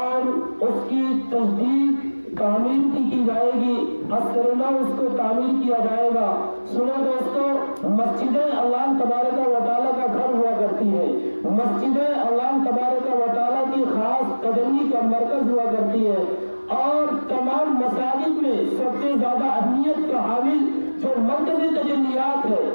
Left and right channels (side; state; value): both; inverted; correlation -1.00